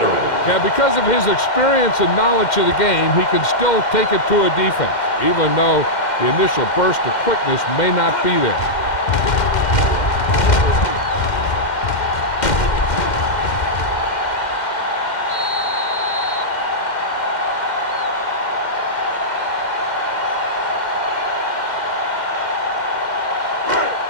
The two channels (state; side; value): late; right; 2.1 ms